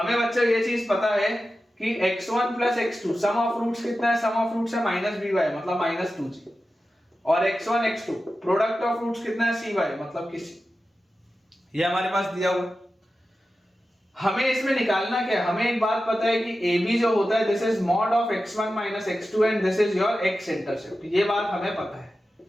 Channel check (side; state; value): both; normal; correlation 0.93